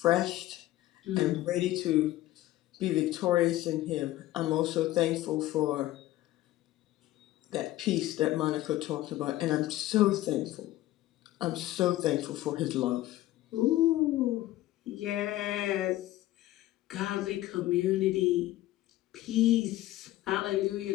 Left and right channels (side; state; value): right; quieter; 15.6 dB